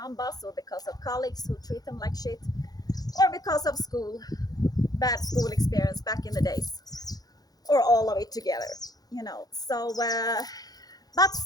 boss, or because of colleagues who treat them like shit, or because of school, bad school experience back in the days, or all of it together, you know. So, but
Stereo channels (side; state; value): right; late; 0.19 ms